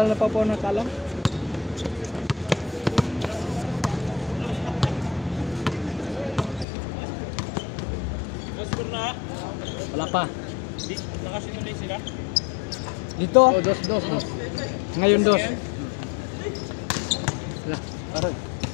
na pa po nakalam. Wala pa. Nakasinulay sila? Dito, Oh, dos. ngayon dos. Wala, aray.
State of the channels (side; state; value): right; drops out; at 6.7 s